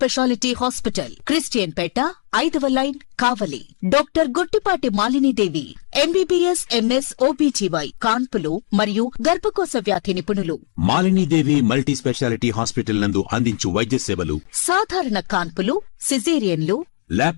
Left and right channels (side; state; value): right; silent; 66 dB below the other